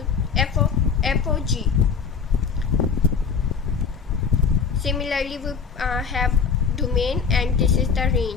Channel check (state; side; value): quieter; right; 6.1 dB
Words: f of g. Similarly, we have domain and this is the